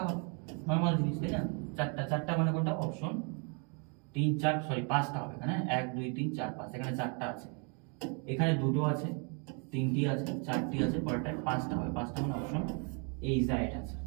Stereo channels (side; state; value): left; quieter; 36.8 dB